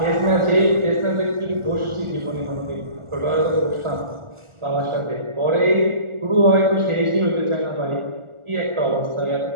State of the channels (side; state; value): left; late; 1.4 ms